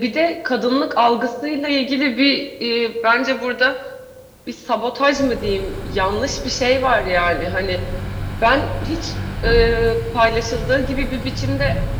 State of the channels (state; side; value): identical; both; correlation 1.00